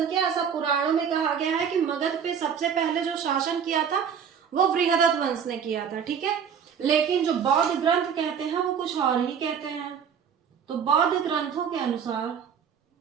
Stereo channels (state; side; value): quieter; left; 7.4 dB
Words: किया, ऐसा पुराणों में कहा गया है कि मगध पे सबसे पहले जो शासन किया था वो वृहदत्त वंश ने किया था। ठीक है, लेकिन जो बौद्ध ग्रंथ कहते हैं वो कुछ और ही कहते हैं। तो बौद्ध ग्रंथों के अनुसार